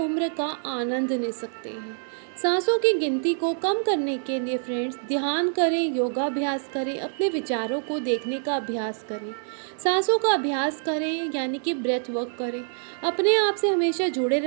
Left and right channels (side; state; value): left; silent; 61 dB below the other